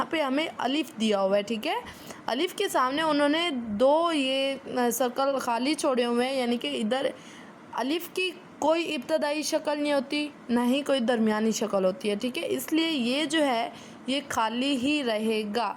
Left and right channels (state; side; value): identical; both; correlation 1.00